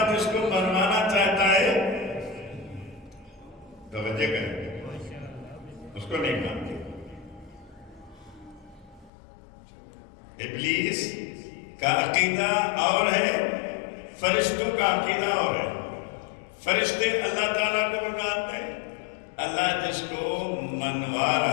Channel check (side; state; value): right; drops out; at 9.1 s